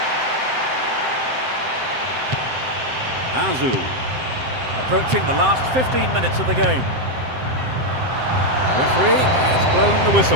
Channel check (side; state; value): left; late; 7.7 ms